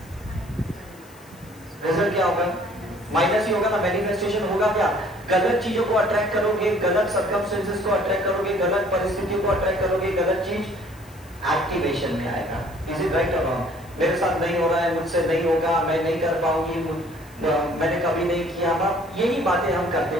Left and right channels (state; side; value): noise; left; hiss, 25 dB below the sound